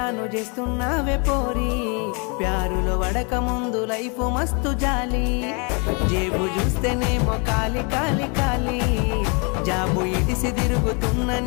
చేస్తున్నావే పోరి ప్యారులో వడక ముందు లైఫ్ మస్తు జాలి జేబు చూస్తేనేమో కాలి కాలి కాలి జాబు ఇడిసి తిరుగుతున్న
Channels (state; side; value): quieter; right; 33.8 dB